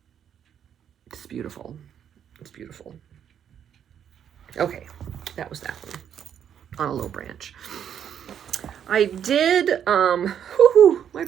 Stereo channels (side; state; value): left; quieter; 9.0 dB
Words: it's beautiful. It's beautiful. Okay, that was that one on a low branch. I did, my